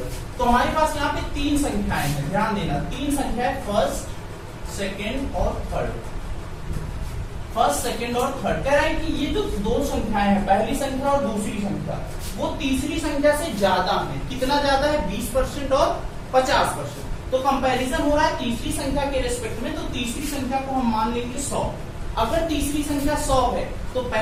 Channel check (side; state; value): both; identical; correlation 1.00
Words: तो हमारे पास यहाँ पे तीन संख्याएं हैं, ध्यान देना। तीन संख्या है, फर्स्ट, सेकेंड और थर्ड। फर्स्ट, सेकेंड और थर्ड। कह रहा है कि ये जो दो संख्याएं हैं, पहली संख्या और दूसरी संख्या, वो तीसरी संख्या से ज्यादा है। कितना ज्यादा है, 20% और 50%। तो कंपैरिजन हो रहा है तीसरी संख्या के रेस्पेक्ट में, तो तीसरी संख्या को हम मान लेंगे 100। अगर तीसरी संख्या 100 है तो